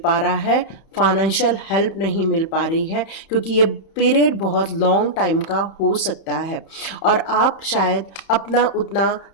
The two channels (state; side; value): late; right; 31 ms